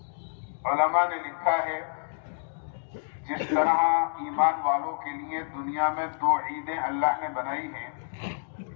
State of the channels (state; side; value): silent; right; digital silence